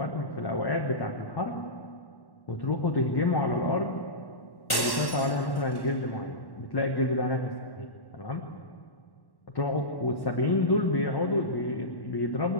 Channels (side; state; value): right; late; 1.1 ms